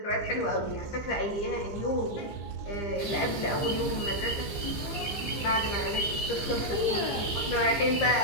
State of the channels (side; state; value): right; late; 14 ms